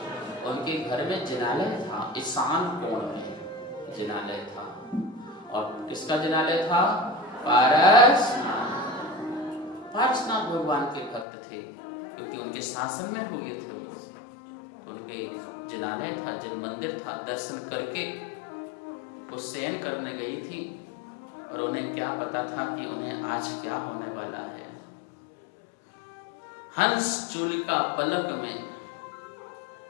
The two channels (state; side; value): drops out; right; at 11.2 s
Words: उनके घर में जिनालय था, ईशान कोण में जिनालय था। और किसका जिनालय था? पारसनाथ भगवान के भक्त थे, क्योंकि उनके शासन में हुए थे। उनके जिनालय था, जिन मंदिर था, दर्शन करके वो शयन करने गई थी। और उन्हें क्या पता था कि उन्हें आज क्या होने वाला है। हंस चूलिका फलक में